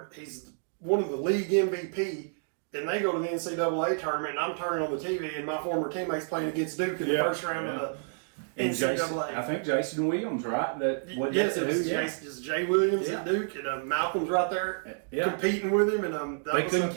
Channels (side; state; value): left; silent; digital silence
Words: He's one of the league MVP. And they go to the NCAA tournament, and I'm turning on the TV, and my former teammates playing against Duke in the first round of the NCAA. I think Jason Williams, right? It's Jay Williams at Duke, and Malcolm's right there competing with him, and they couldn't